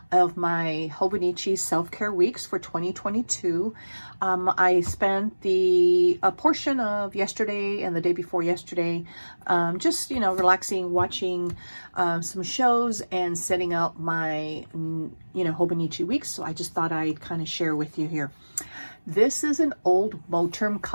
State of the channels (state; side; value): inverted; both; correlation -1.00